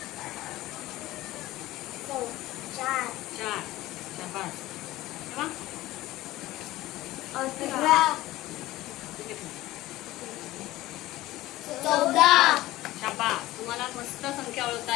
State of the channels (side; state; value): right; quieter; 17.0 dB